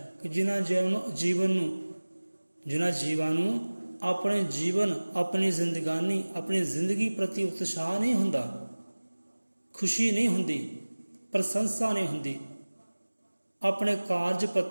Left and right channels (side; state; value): both; inverted; correlation -1.00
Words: ਕਿ ਜਿਨ੍ਹਾਂ ਜੀਵਾਂ ਨੂੰ ਆਪਣੇ ਜੀਵਨ, ਆਪਣੀ ਜ਼ਿੰਦਗਾਨੀ, ਆਪਣੀ ਜ਼ਿੰਦਗੀ ਪ੍ਰਤੀ ਉਤਸ਼ਾਹ ਨਹੀਂ ਹੁੰਦਾ, ਖੁਸ਼ੀ ਨਹੀਂ ਹੁੰਦੀ, ਪ੍ਰਸ਼ੰਸਾ ਨਹੀਂ ਹੁੰਦੀ, ਆਪਣੇ ਕਾਰਜ